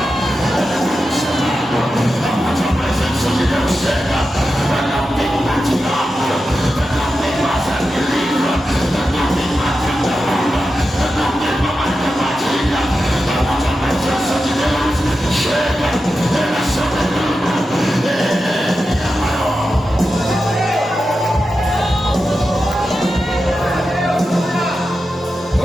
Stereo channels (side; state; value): both; normal; correlation 0.90